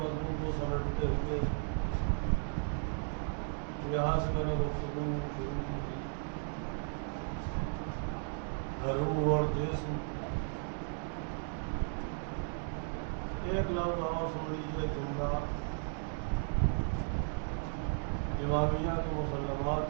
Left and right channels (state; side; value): silent; left; 54 dB below the other